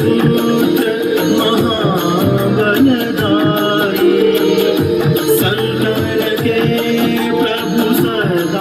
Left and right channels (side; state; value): both; identical; correlation 1.00